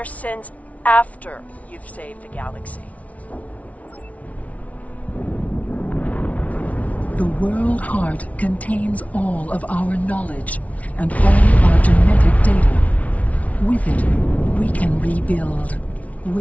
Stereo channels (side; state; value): right; late; 0.068 ms